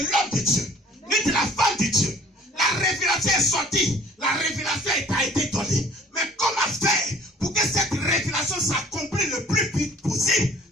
l'homme de Dieu, ni de la femme de Dieu. La révélation est sortie. La révélation a été donnée. Mais comment faire pour que cette révélation s'accomplisse le plus vite possible?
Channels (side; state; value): both; normal; correlation 0.52